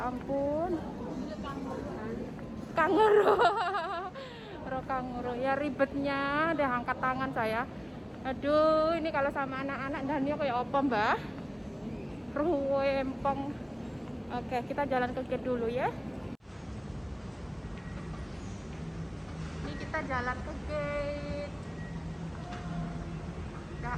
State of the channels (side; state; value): both; identical; correlation 1.00